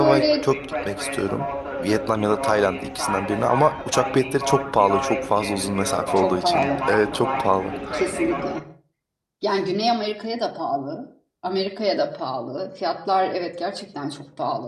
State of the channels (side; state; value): both; identical; correlation 1.00